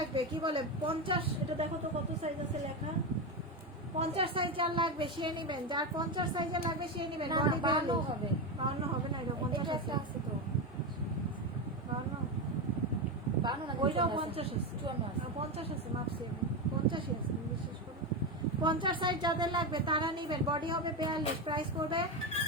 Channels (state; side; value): normal; both; correlation 0.13